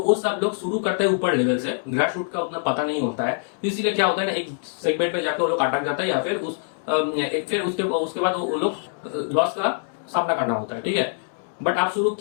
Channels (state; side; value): silent; right; 63 dB below the other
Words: सब लोग शुरू करते हैं ऊपर लेवल से, ग्रास रूट का उतना पता नहीं होता है, तो इसीलिए क्या होता है ना, एक सेगमेंट पे जाकर वो लोग अटक जाता है, या फिर फिर उसके बाद वो लोग लॉस का सामना करना होता है, ठीक है। बट आप शुरू